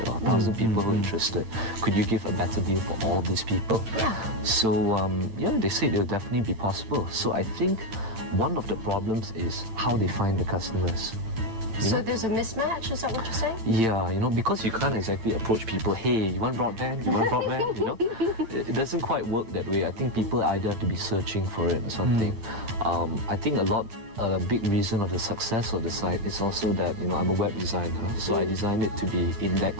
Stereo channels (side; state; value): left; late; 8.9 ms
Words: or 1,000 people who are interested, could you give a better deal for all these people? Yeah. So they say it'll definitely be possible. So I think one of the problems is how they find the customers. So there's a mismatch, is that what you're saying? Yeah, because you can't exactly approach people, hey, you want broadband? You want broadband? It doesn't quite work that way. I think people either have to be searching for it or something. I think a lot a big reason of the success of the site is also that, you know, I'm a web designer, so I designed it to be